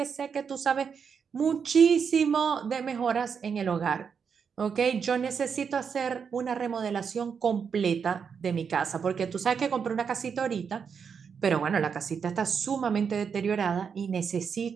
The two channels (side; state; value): left; quieter; 6.5 dB